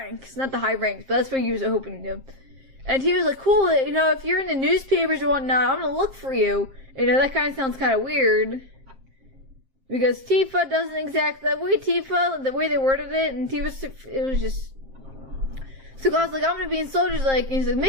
Not the high ranks, but that's what he was hoping to do. And he was like, cool, if you're in the newspapers or whatnot, I'm gonna look for you. That kind of sounds kind of weird. Because Tifa doesn't exactly, the way they worded it, and it was just... So Cloud's like, I'm gonna be in soldiers, and he's like,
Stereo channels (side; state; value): left; late; 7.5 ms